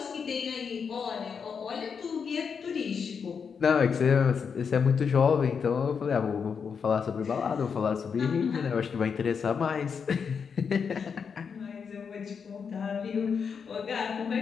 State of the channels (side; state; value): right; quieter; 6.3 dB